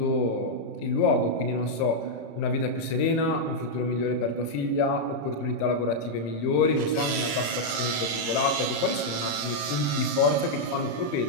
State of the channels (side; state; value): right; late; 34 ms